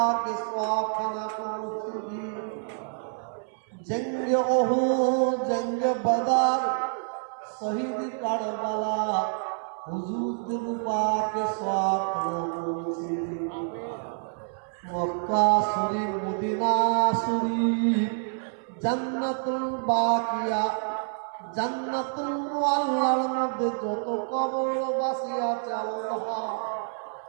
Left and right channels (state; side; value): silent; left; 60 dB below the other